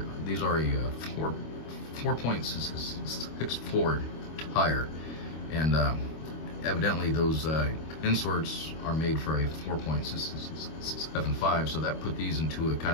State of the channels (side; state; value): right; late; 25 ms